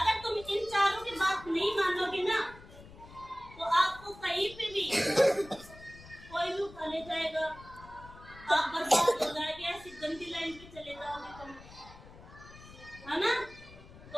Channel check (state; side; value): noise; left; rumble, 19 dB below the sound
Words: तुम इन चारों की बात नहीं मानोगे ना तो आपको कहीं पे भी कोई भी उठा ले जाएगा, आप बर्बाद हो जाएंगे, ऐसी गंदी लाइन पे चले जाओगे तुम, है ना?